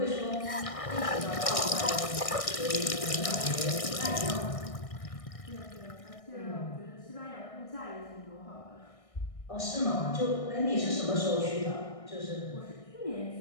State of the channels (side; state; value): right; late; 1.6 ms